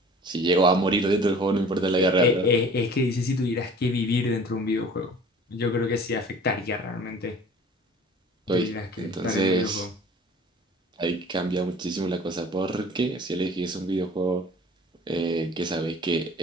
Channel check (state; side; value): normal; both; correlation 0.46